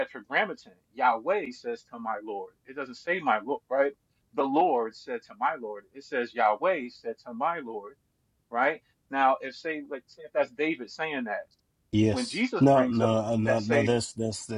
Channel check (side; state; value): both; identical; correlation 1.00